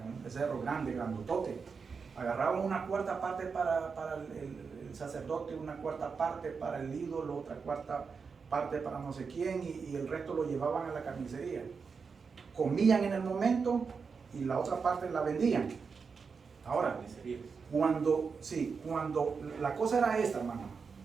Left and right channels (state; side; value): quieter; left; 5.4 dB